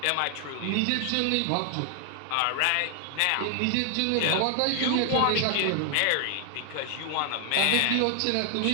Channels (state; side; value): different; both; correlation 0.00